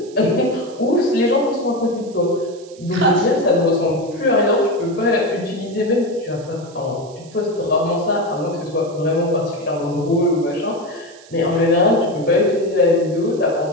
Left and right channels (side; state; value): right; noise; hiss, 24 dB below the sound